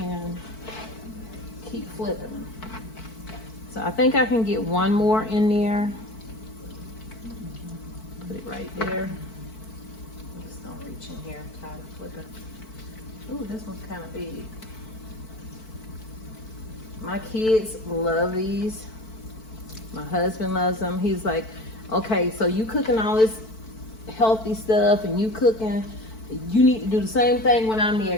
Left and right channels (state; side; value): late; right; 4.5 ms